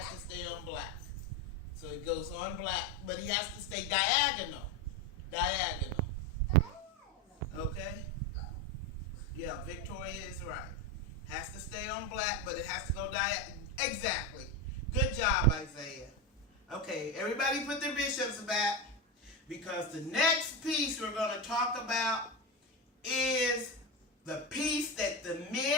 to stay on black. So it goes on black, but he has to stay diagonal. Diagonal. Okay? Yeah, Victoria is right. Has to stay on black, but it has to go diagonal. Exactly. Good job, Isaiah. Okay, everybody put their bishops back because the next piece we're going to talk about is the piece that the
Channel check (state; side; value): normal; both; correlation 0.16